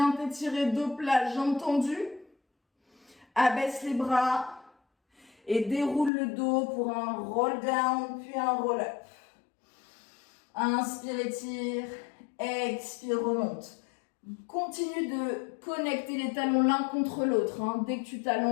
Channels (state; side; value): drops out; right; at 6.1 s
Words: t'étirer dos plat, jambes tendues. Abaisse les bras et déroule le dos pour un roll down puis un roll up. Inspire, étire, expire, remonte. Continue de connecter les talons l'un contre l'autre. Hein. Dès que tu